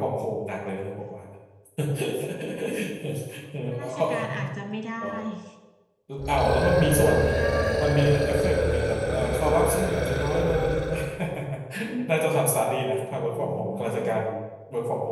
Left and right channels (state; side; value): identical; both; correlation 1.00